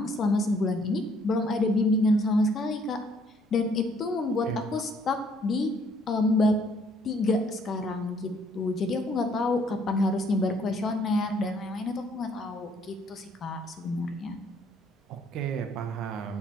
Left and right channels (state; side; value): normal; both; correlation 0.64